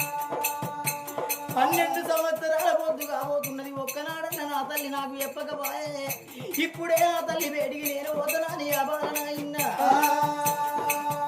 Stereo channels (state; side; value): identical; both; correlation 1.00